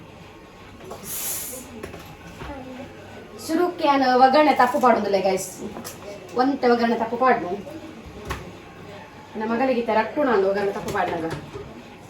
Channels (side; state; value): both; identical; correlation 1.00